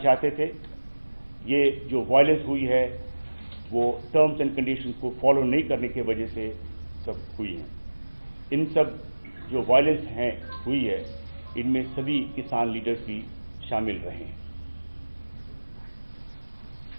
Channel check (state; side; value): inverted; both; correlation -1.00